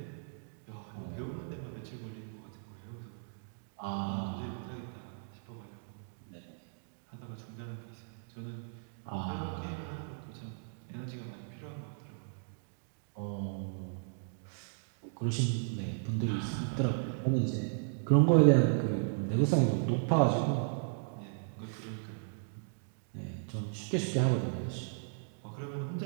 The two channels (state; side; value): silent; left; digital silence